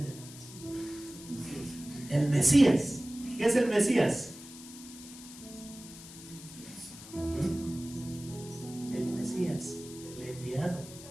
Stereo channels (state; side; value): noise; left; hiss, 16 dB below the sound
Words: el Mesías? ¿Qué es el Mesías? El Mesías, el enviado